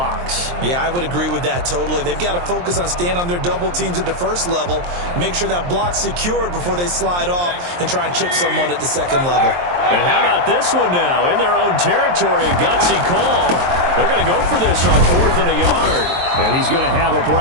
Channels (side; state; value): left; late; 23 ms